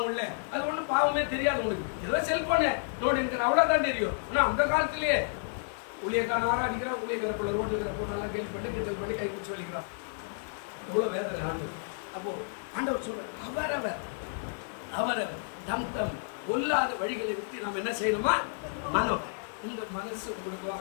உள்ள. அது ஒன்றும் பாவமே தெரியாது உனக்கு. ஏதோ செல்போனை நோடி இருக்கிற அவ்வளோதான் தெரியும். ஆனால் அந்த காலத்திலேயே ஊழியக்காரன் ஆராதிக்கிறான், ஊழியக்கார பிள்ளை ரோட்டில் இருக்கிற போட்டெல்லாம் கேள்வி பண்ணி கிண்டல் பண்ணி கை பிடிச்சி வலிக்கிறான். எவ்வளோ வேதனை ஆண்டவர். அப்போ ஆண்டவர் சொல்ற அவரவர் தம் கொல்லாத வழிகளை விட்டு நாம் என்ன செய்யணுமா, மனம். உங்க மனசு உங்களுக்கோ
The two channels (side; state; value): right; silent; digital silence